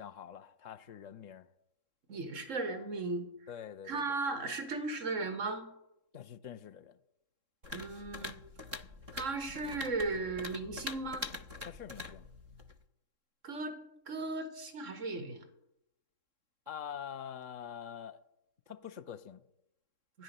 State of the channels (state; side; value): late; left; 3.7 ms